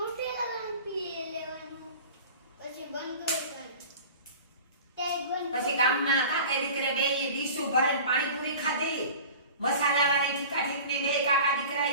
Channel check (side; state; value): both; inverted; correlation -0.39